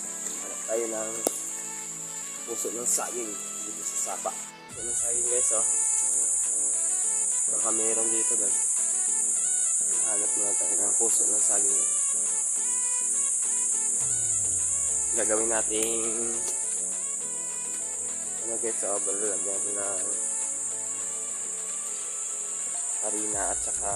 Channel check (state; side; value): identical; both; correlation 1.00